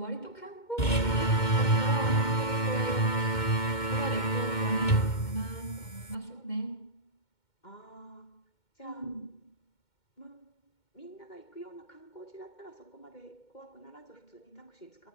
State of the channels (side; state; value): right; late; 2.2 ms